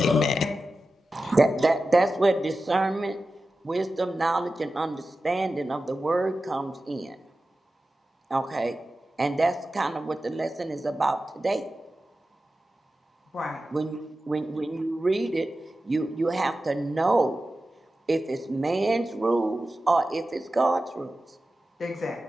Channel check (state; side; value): normal; both; correlation 0.93